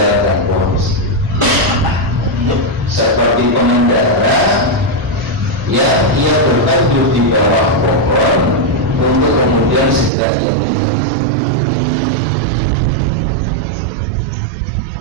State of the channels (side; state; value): left; drops out; at 10.1 s